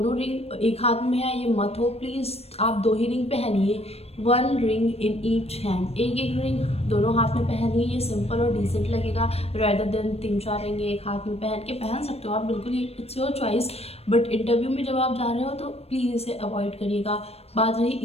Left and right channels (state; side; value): late; right; 0.29 ms